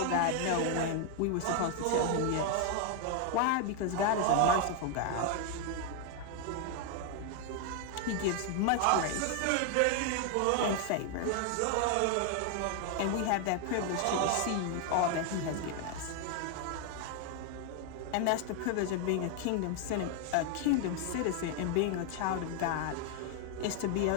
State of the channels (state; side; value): different; both; correlation 0.00